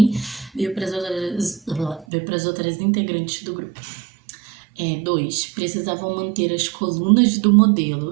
veio pras outras integrantes do grupo. 2. Precisavam manter as colunas do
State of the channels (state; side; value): drops out; left; at 2.1 s